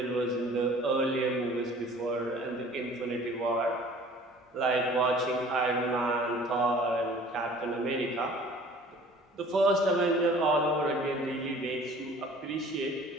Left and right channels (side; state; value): both; normal; correlation 0.49